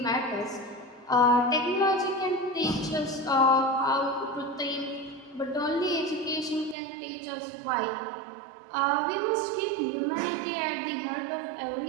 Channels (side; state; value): left; drops out; at 6.8 s